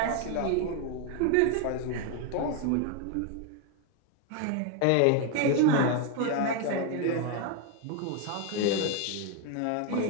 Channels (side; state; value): both; different; correlation 0.01